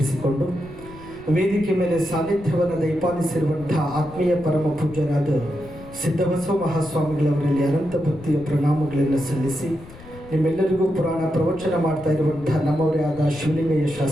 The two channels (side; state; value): left; noise; rumble, 19 dB below the sound